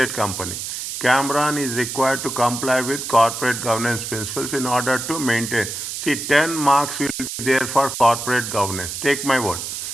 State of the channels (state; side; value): noise; right; hiss, 6 dB below the sound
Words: company. Cameron is required to comply with corporate governance principles in order to maintain. See, 10 marks will be there for corporate governance. Take my word.